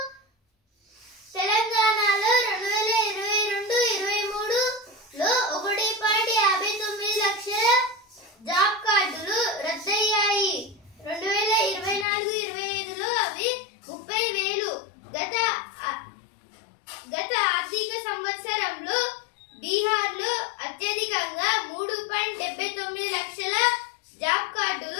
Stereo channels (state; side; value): drops out; right; at 12.1 s